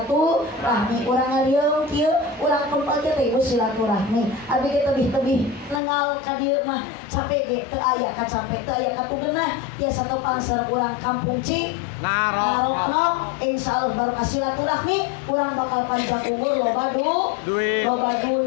Urang ngaliung kieu urang kumpul teh ieu silaturahmi. Abdi ge tebih-tebih nengal ka dieu mah capek ge teu aya ka capek teu aya ka tugeunah tiasa tepang sareng urang kampung Ci Narokno. Insyaallah barokah silaturahmi urang bakal panjang umur loba duit loba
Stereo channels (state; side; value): drops out; right; at 5.8 s